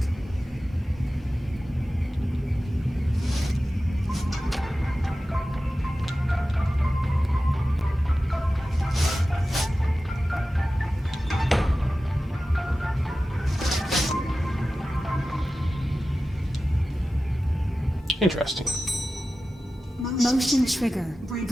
Interesting. Motion trigger.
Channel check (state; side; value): normal; both; correlation 0.95